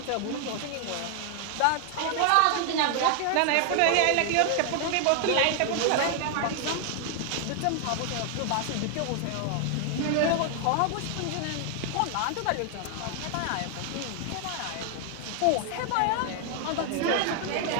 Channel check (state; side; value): different; both; correlation 0.00